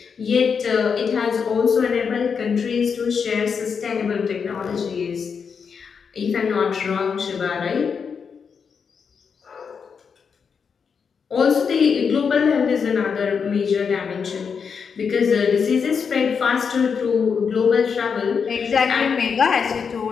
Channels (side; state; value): right; quieter; 6.2 dB